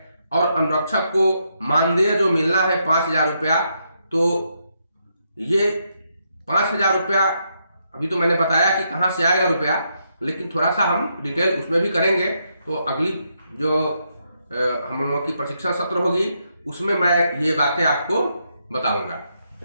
और अनुरक्षक को मानदेय जो मिलना है 5,000 रुपया, तो ये 5,000 रुपया अभी तो मैंने बताया कि कहाँ से आएगा रुपया, लेकिन थोड़ा सा हम डिटेल उसमें भी करेंगे। तो अगली जो हम लोगों की प्रशिक्षण सत्र होगी उसमें मैं ये बातें आपको बताऊंगा।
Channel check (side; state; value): both; inverted; correlation -0.79